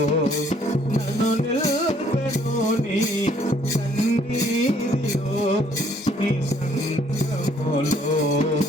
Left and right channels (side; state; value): both; normal; correlation 0.64